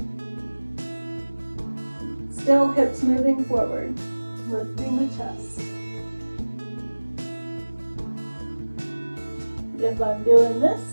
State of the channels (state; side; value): inverted; both; correlation -1.00